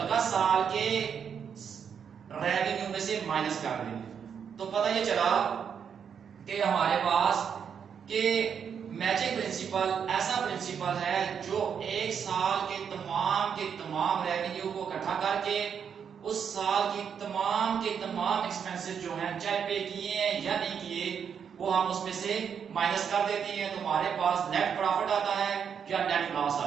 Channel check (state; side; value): quieter; left; 7.4 dB